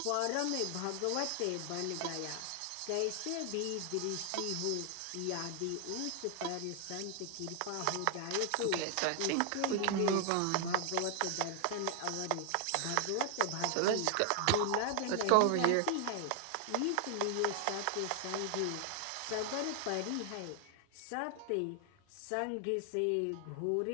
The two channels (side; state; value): both; different; correlation 0.00